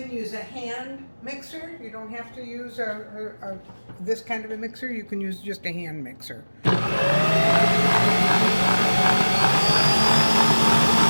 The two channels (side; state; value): both; inverted; correlation -1.00